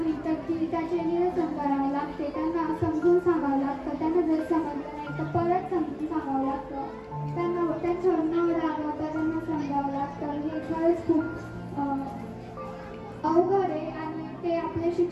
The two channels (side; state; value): both; identical; correlation 1.00